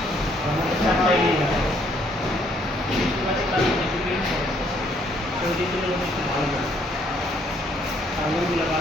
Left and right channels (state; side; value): normal; both; correlation 0.67